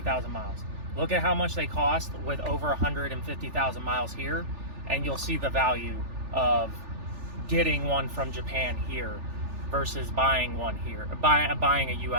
miles. Look at how much they cost with over 150,000 miles here, and you'll see the value of getting one from Japan here versus buying one here, buying a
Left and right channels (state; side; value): late; left; 3.4 ms